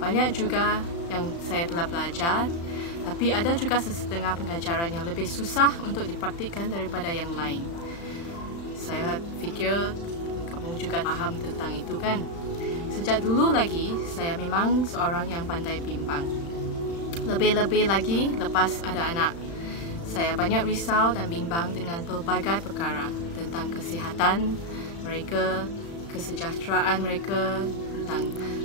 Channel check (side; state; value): right; late; 35 ms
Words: juga yang saya telah belajar, tapi ada juga sesetengah pengajaran yang lebih susah untuk dipraktikkan daripada yang lain. Saya fikir kamu juga faham tentang itu kan? Sejak dulu lagi, saya memang seorang yang pandai bimbang. Lebih-lebih lagi lepas ada anak. Saya banyak risau dan bimbang dengan pelbagai perkara tentang kesihatan mereka, kesejahteraan mereka, tentang